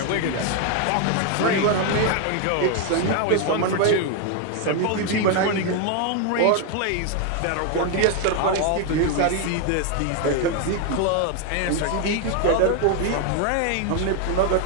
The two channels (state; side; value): different; both; correlation 0.01